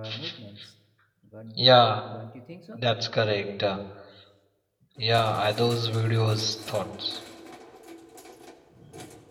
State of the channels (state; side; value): identical; both; correlation 1.00